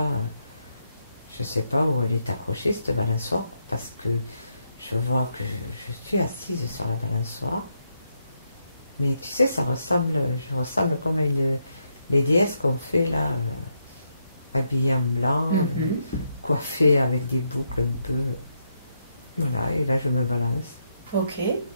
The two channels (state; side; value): inverted; both; correlation -0.80